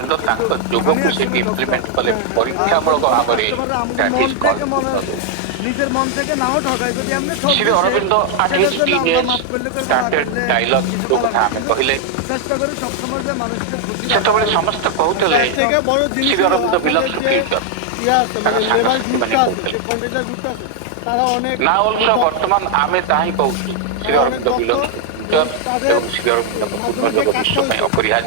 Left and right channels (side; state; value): both; different; correlation 0.00